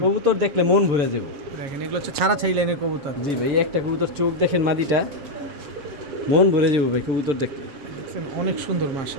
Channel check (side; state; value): left; late; 7.3 ms